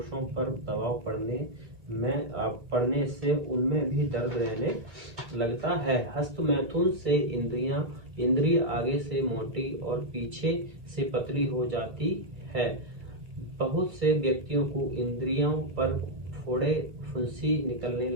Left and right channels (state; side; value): late; left; 2.3 ms